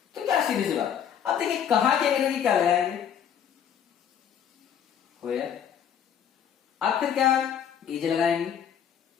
तो क्या सीधी सी बात। अब देखिए कहां के अंग्रेजी क्या लगाएंगे? वेयर। अब फिर क्या इज लगाएंगे,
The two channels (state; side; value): quieter; right; 8.6 dB